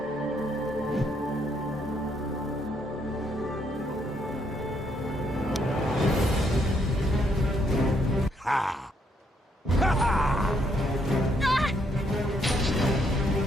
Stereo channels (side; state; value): both; normal; correlation 0.73